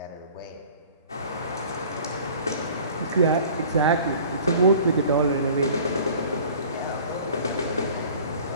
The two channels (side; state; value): both; inverted; correlation -0.47